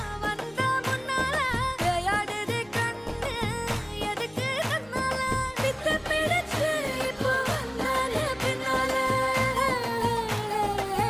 வந்த முன்னால விளையாடுது கண்ணு எதுக்கு தன்னால வித்து பிடிச்சு இப்போ வந்தால பின்னால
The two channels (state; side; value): noise; left; hum, 27 dB below the sound